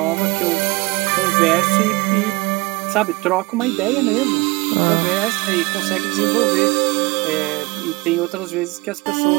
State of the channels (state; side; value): quieter; left; 24.9 dB